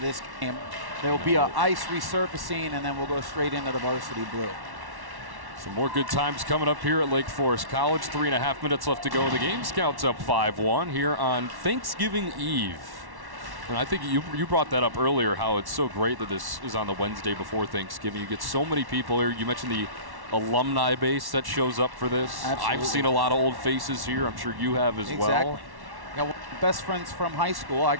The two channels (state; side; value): late; left; 1.1 ms